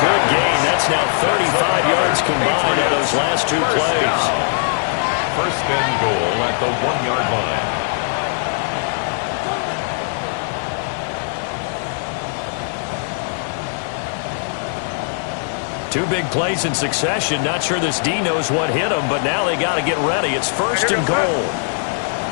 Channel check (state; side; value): silent; right; digital silence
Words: good gain. That's now 35 yards combined on those last 2 plays. 1st and goal at the 1-yard line. Two big plays in succession. Not sure this D knows what hit him, but now they got to get ready. It's first and goal.